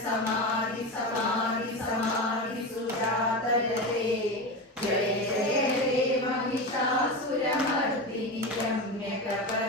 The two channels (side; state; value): both; normal; correlation 0.21